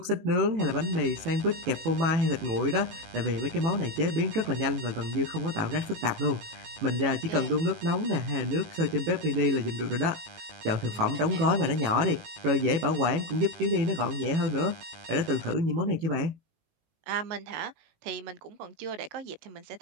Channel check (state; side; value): late; left; 18 ms